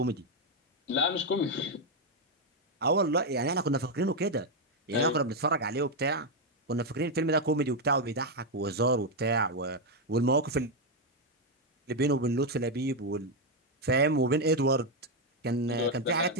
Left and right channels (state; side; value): normal; both; correlation 0.03